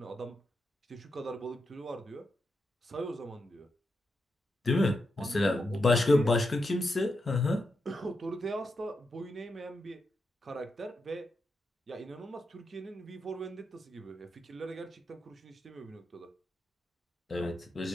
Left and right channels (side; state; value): both; normal; correlation 0.85